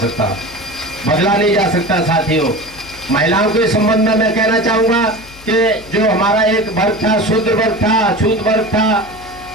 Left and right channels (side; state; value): left; noise; hum, 21 dB below the sound